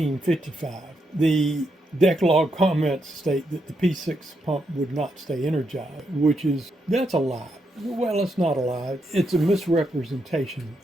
The deck log comments state that the P6 pump would not stay energized, that's a lie. Well, it's not a lie. It's a misrepresentation.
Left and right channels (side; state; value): both; normal; correlation 0.81